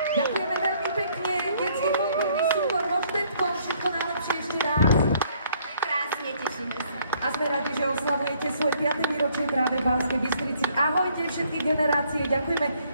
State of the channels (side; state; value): both; inverted; correlation -0.65